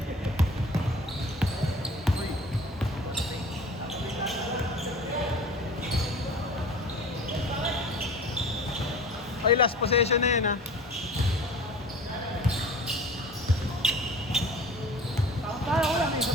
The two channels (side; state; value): both; normal; correlation 0.42